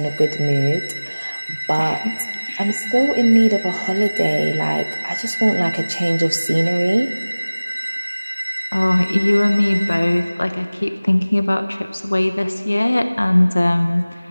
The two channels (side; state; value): both; inverted; correlation -0.99